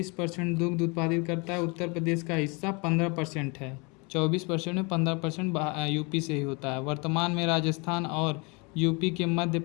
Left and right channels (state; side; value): quieter; right; 30.2 dB